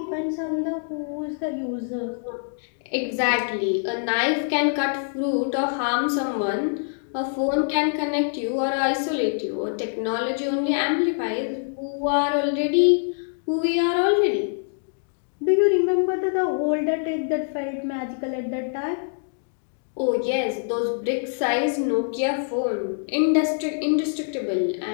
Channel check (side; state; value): right; silent; digital silence